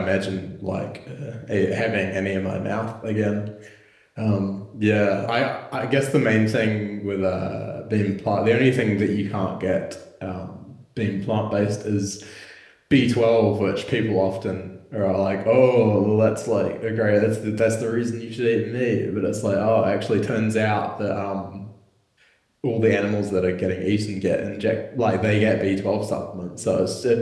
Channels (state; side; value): identical; both; correlation 1.00